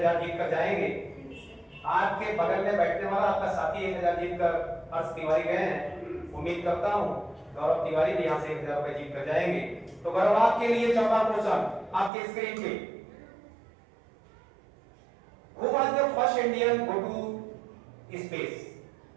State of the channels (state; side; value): drops out; left; at 12.1 s